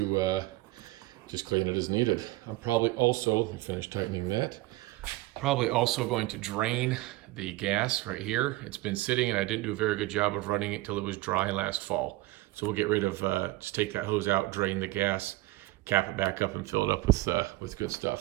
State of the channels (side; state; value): left; quieter; 18.7 dB